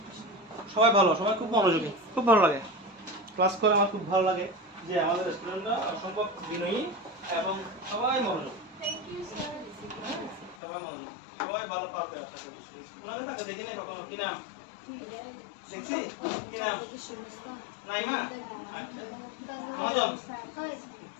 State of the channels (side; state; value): right; drops out; at 10.6 s